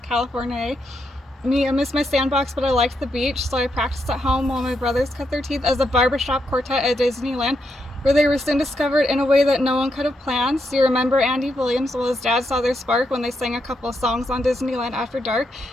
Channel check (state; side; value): normal; both; correlation 0.81